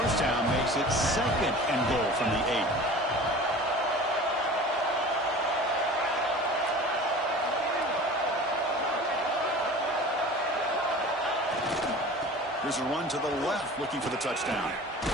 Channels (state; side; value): normal; both; correlation 0.40